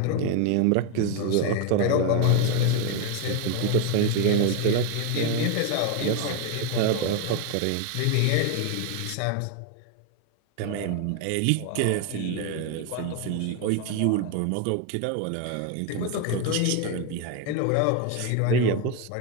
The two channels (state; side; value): different; both; correlation 0.01